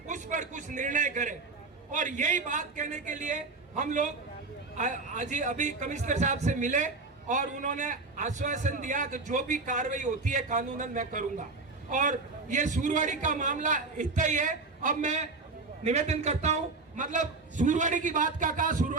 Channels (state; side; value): quieter; left; 3.8 dB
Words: पर कुछ निर्णय करें। और यही बात कहने के लिए हम लोग आज अभी कमिश्नर साहब से मिले और उन्होंने आश्वासन दिया कि जो भी कार्रवाई होती है कानूनन मैं करूंगा। और ये सूरवाड़ी का मामला इतना ही है। अब मैं निवेदन करता हूं, मतलब सूरवाड़ी की बात का कहा,